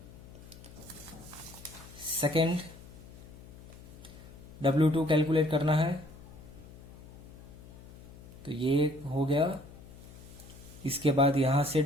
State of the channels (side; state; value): left; noise; hum, 18 dB below the sound